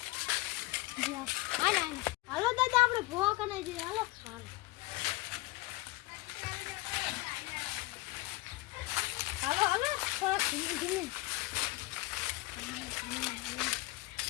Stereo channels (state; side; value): quieter; right; 20.8 dB